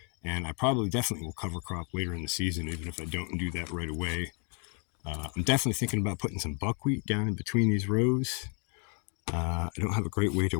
And I probably definitely will cover crop later in the season, even if I don't do that right away. I'm definitely thinking about putting some buckwheat down in between these rows. I don't have a great way to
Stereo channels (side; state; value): right; quieter; 37.5 dB